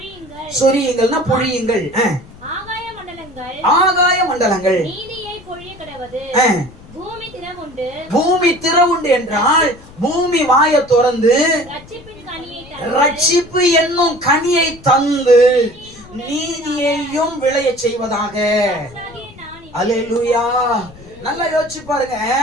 சொரியுங்கள்னா பொழியுங்கள். ஆகாய மண்டலங்கள் பூமி தினம் பூமி திறவுண்டு என்றால் பூமி வாயை திறந்து ரட்சிப்பு என்னும் கனியை தந்து நீதியையும் விளைய செய்வதாக. அல்லேலூயா. நல்லா யோசிச்சு பாருங்க.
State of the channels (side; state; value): left; noise; rumble, 21 dB below the sound